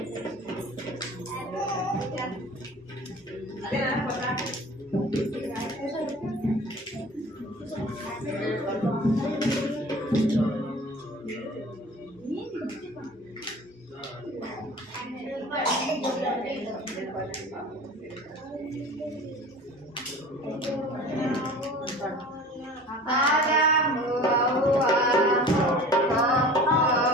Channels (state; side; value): normal; both; correlation 0.41